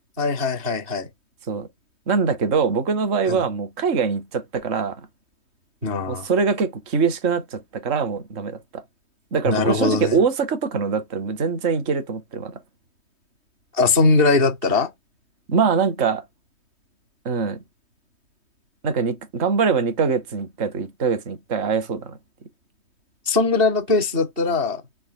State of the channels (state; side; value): late; left; 3.2 ms